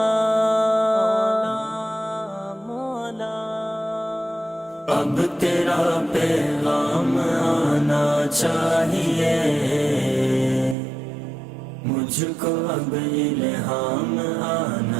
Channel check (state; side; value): drops out; left; at 10.8 s